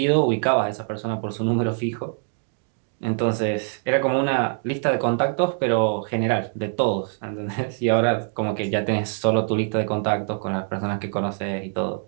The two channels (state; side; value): silent; left; digital silence